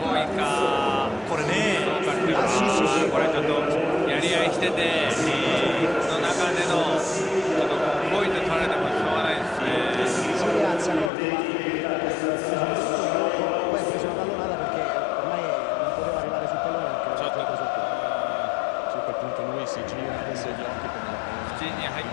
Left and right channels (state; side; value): drops out; right; at 11.1 s